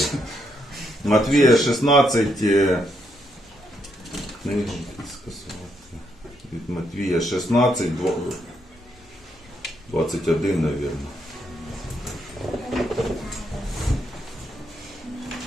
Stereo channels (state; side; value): normal; both; correlation 0.77